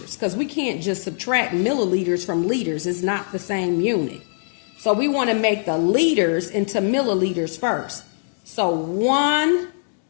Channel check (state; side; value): silent; right; digital silence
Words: because we can't just subtract milliliters from liters. It's not the same unit. So we want to make the liters into milliliters first. So 2